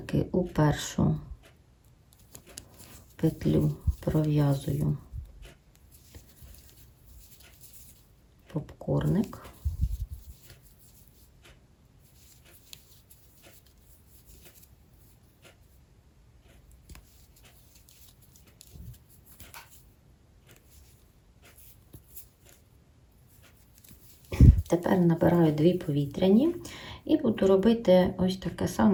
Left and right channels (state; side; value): identical; both; correlation 1.00